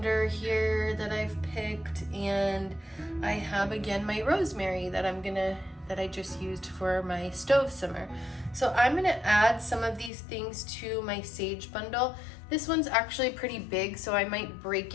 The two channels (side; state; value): right; drops out; at 10.1 s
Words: here that I've picked, and I have again my rosemary that I just used for my stove simmer. So I'm gonna add some of these things to my sage bundle. This one's actually pretty big, so I might break